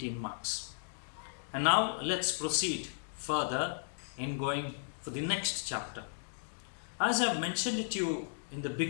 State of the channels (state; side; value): silent; right; digital silence